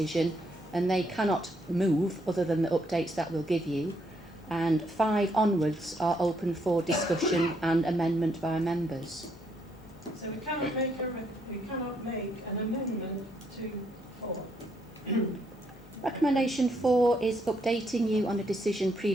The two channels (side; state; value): both; normal; correlation 0.74